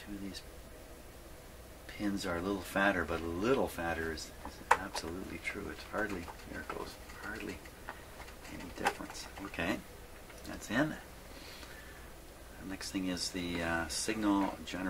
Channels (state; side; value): identical; both; correlation 1.00